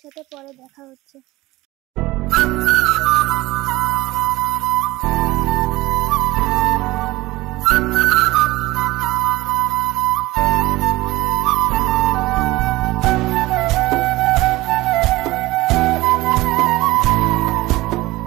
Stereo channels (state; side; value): quieter; left; 19.1 dB